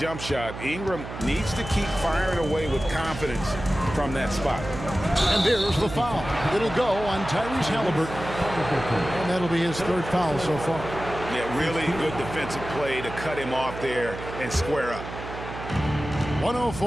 shot, Ingram needs to keep firing away with confidence from that spot. And there's the foul. It'll go on Tyrese Halliburton. And that'll be his 3rd foul so far. Yeah, really good defensive play to cut him off there and square up.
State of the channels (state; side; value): noise; right; hum, 10 dB below the sound